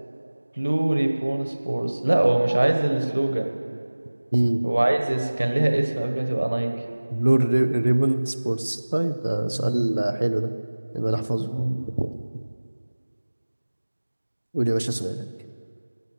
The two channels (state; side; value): inverted; both; correlation -1.00